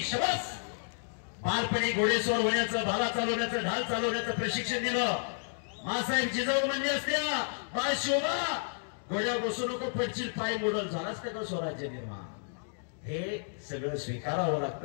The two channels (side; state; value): right; silent; digital silence